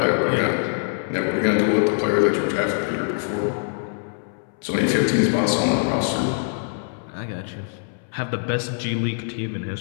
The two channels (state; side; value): silent; right; 63 dB below the other